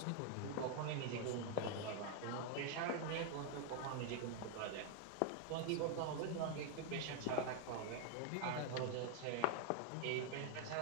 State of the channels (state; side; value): different; both; correlation 0.00